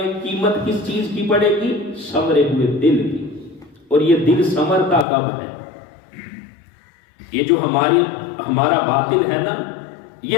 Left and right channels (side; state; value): right; drops out; at 5.1 s